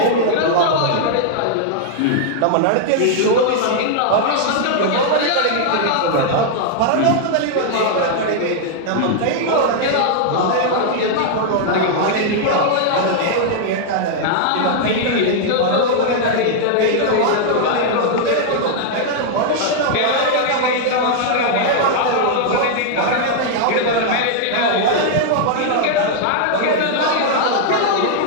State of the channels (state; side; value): different; both; correlation -0.01